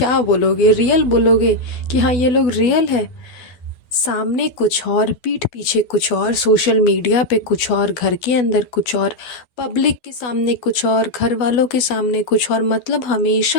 बोलोगे, रियल बोलोगे कि हाँ ये लोग रियल है। सामने कुछ और, पीठ पीछे कुछ और, सोशल मीडिया पे कुछ और, घर के अंदर कुछ और, पब्लिक के सामने कुछ और, घर वालों के सामने कुछ और, मतलब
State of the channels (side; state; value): right; late; 12 ms